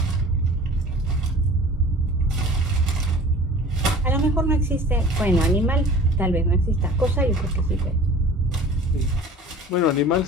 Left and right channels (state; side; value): normal; both; correlation 0.44